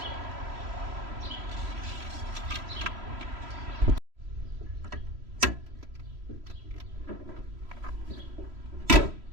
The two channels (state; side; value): late; left; 3.0 ms